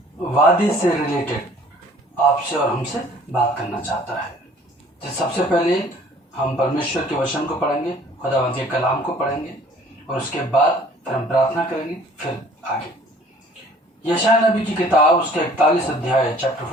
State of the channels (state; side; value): normal; both; correlation 0.54